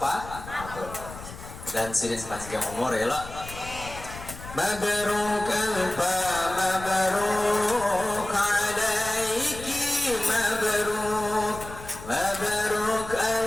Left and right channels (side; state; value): left; noise; rumble, 13 dB below the sound